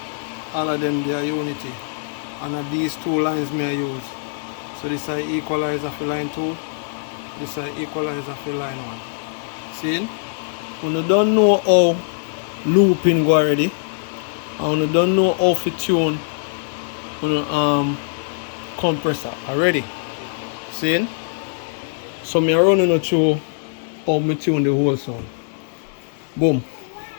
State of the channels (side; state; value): right; silent; digital silence